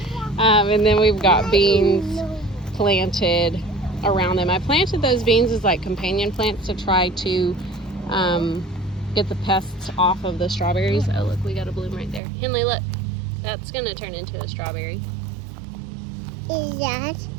And then we've got beans planted around them. I planted those beans as like companion plants to try to get the pests off of the strawberries. Oh look, we got a bloom right there. Henley, look. That's going to turn into a strawberry. Is that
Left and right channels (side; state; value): left; drops out; at 12.2 s